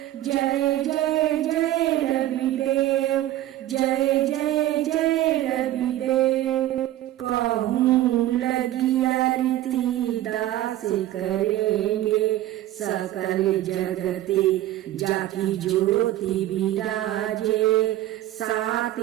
जय जय जय रवि देव, जय जय जय रवि देव। कहूँ लगी आरती दास करेंगे, सकल जगती जाकी ज्योति विराजे। सात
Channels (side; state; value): left; quieter; 14.2 dB